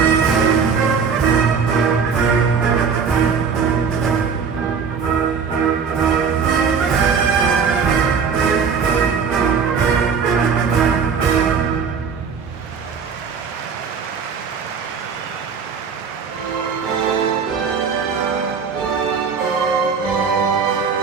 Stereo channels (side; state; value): left; quieter; 6.0 dB